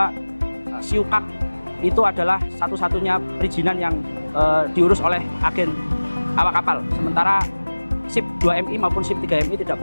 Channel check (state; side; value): inverted; both; correlation -1.00